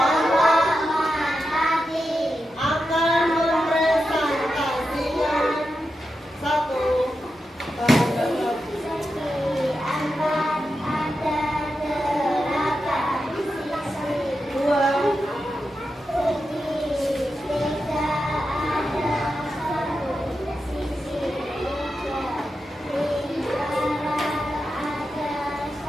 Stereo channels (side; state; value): both; normal; correlation 0.89